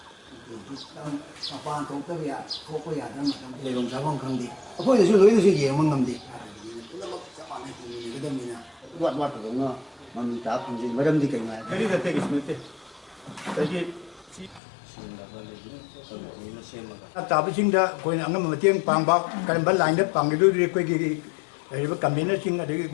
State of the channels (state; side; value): drops out; right; at 14.6 s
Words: ꯃꯄꯥꯟ ꯊꯣꯛꯇꯕ ꯊꯣꯛꯄ ꯌꯥꯗꯕ ꯃꯇꯝ ꯂꯩꯐꯝ ꯆꯥꯐꯝ ꯈꯪꯗꯦ ꯑꯩꯈꯣꯏꯗꯁꯨ ꯂꯣꯏꯅꯁꯨ ꯌꯦꯡꯕ ꯉꯝꯗꯦ ꯄꯨꯝꯅꯃꯛ ꯆꯞ ꯃꯥꯟꯅꯩ ꯌꯦꯡꯒꯗꯕꯅꯤꯅ ꯋꯥꯠꯇꯕꯅ ꯃꯃꯤ ꯇꯥ ꯐꯪꯖꯩ ꯃꯔꯝꯗꯤ ꯀꯩꯅꯣ ꯇꯥꯕꯁꯤꯡꯗ ꯑꯩꯈꯣꯏꯅ ꯑꯉꯝꯕ ꯃꯇꯦꯡ ꯄꯥꯡꯕ ꯀꯔꯝꯕ ꯂꯥꯏꯟꯗ ꯄꯥꯡꯒꯗꯣꯔꯤ ꯑꯩꯈꯣꯏꯒꯤ ꯂꯩꯔꯤꯕ ꯀꯟꯚꯦꯅꯔꯁꯤꯡ ꯑꯗꯒꯤ